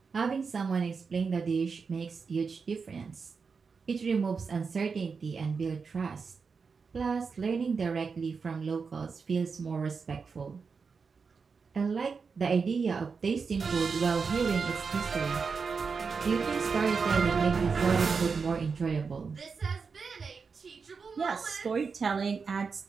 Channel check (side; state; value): left; quieter; 5.2 dB